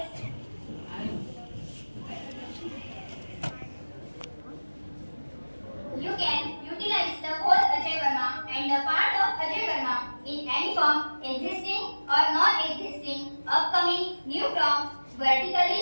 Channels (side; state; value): both; inverted; correlation -1.00